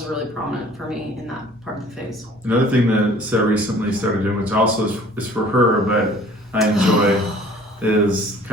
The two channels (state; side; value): normal; both; correlation 0.51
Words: really prominent for me in that part of the phase. Another thing that Sarah recently started doing, which also is for her, but I enjoy, is